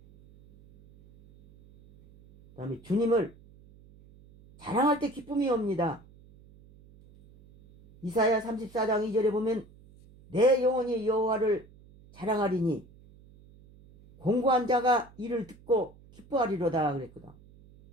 그 다음에 주님을 자랑할 때 기쁨이 옵니다. 이사야 34장 2절에 보면 내 영혼이 여호와를 자랑하리니 공고한 자가 이를 듣고 기뻐하리로다 그랬거든.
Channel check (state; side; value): noise; right; hum, 25 dB below the sound